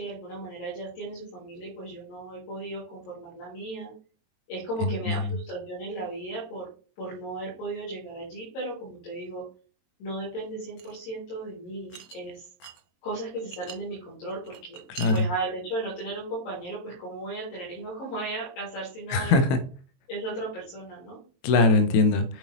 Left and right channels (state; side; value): late; right; 23 ms